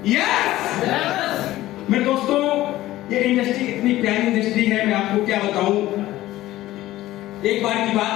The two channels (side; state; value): right; quieter; 15.8 dB